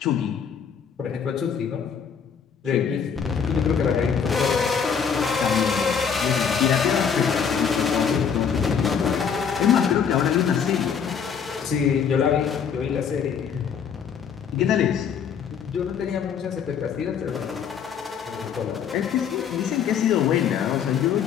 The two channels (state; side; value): quieter; right; 7.1 dB